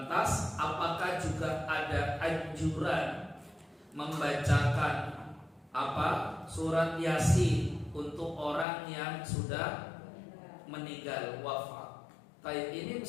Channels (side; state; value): right; drops out; at 8.7 s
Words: apakah juga ada anjuran membacakan surat Yasin untuk orang yang sudah meninggal wafat? Ini